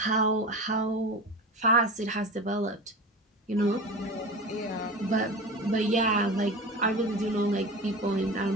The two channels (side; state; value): both; normal; correlation 0.30